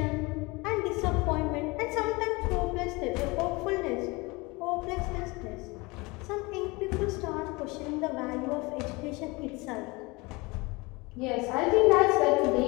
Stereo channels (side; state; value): right; quieter; 24.9 dB